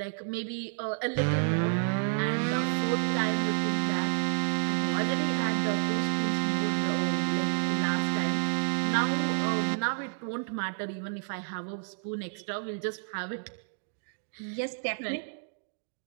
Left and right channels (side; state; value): left; silent; digital silence